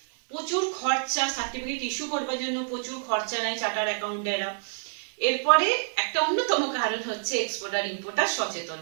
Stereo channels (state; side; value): silent; left; digital silence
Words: প্রচুর খরচা, সার্টিফিকেট ইস্যু করবার জন্য প্রচুর খরচা নেয় চার্টার অ্যাকাউন্টেরা, এরপরে একটা অন্যতম কারণ হচ্ছে এক্সপোর্টার ইম্পোর্টার সচেতন